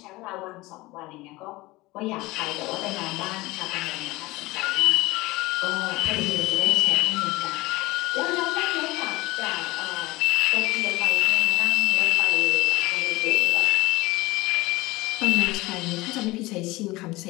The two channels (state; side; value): quieter; right; 20.5 dB